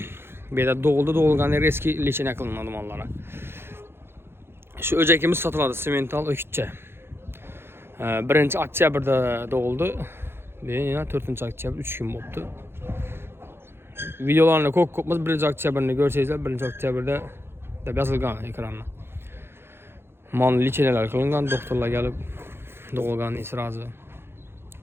Bu yerda doğulgan eski lichene qilinadi mollara. Şu öcekimiz satıldı simental ökütçe. 1 oktyabrda doğuldu. Yine 4 oktyabr 3 gün oldu. Videolarını kopmaz 1 oktyabrını görseniz 1 oktyabrda da yazılgan ekranına. Mal liçeneler kılıngan, doktorlar gelip doğulgan israzı.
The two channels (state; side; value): late; left; 0.11 ms